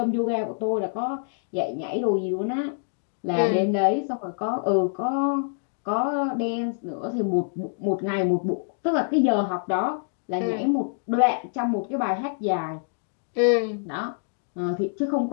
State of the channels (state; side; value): silent; right; digital silence